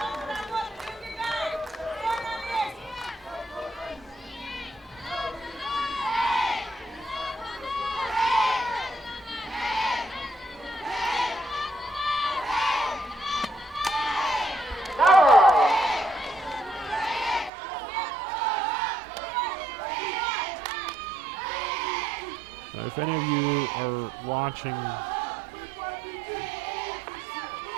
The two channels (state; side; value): drops out; left; at 17.5 s